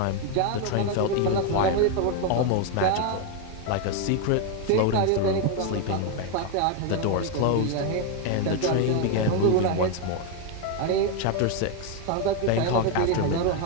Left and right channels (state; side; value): different; both; correlation 0.01